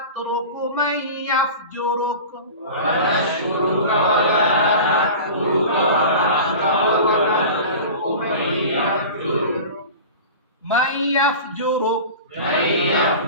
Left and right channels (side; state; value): both; inverted; correlation -0.34